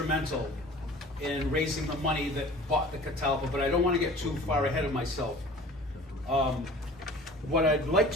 in raising the money that bought the Catalpa, but I don't want to get too far ahead of myself. What I'd like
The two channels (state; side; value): normal; both; correlation 0.44